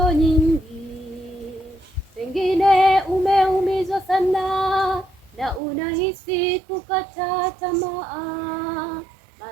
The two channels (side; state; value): left; drops out; at 5.6 s